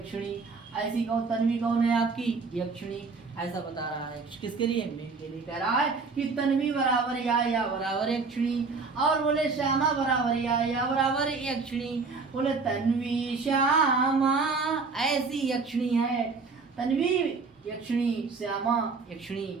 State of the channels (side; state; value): left; quieter; 4.4 dB